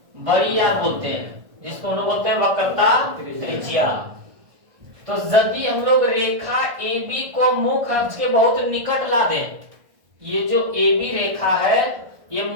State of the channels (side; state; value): left; late; 1.6 ms